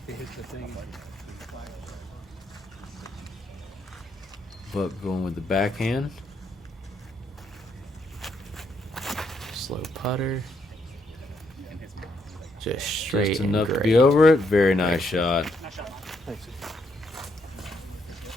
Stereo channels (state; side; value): normal; both; correlation 0.75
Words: it hits the thing. Buck going with the backhand. Slow putter. Just straight Just and enough to great. be over it. Very nice shot.